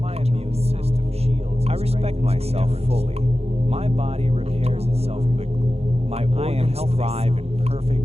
immune system shields. I respect myself fully. My body repairs itself quickly. My organs thrive in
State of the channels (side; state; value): left; late; 0.30 ms